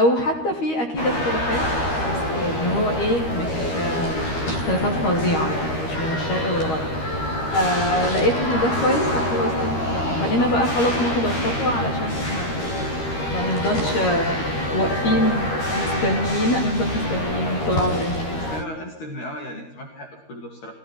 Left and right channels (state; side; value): late; right; 13 ms